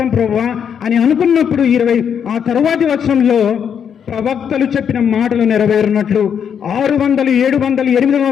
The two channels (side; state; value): right; quieter; 7.8 dB